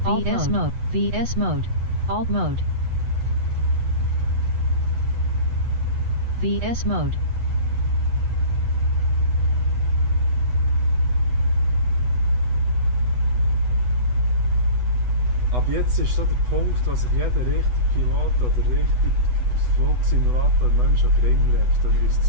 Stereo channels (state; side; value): late; left; 8.1 ms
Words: VS mode. VS mode. Alt mode. VS mode. Ab jetzt ist so der Punkt, wo sich jeder richtige Pilot oder richtig Flugsimulator Mensch an den Ring legt, wenn er uns